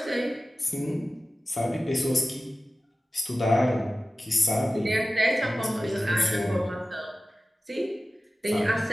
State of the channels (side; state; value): both; normal; correlation 0.96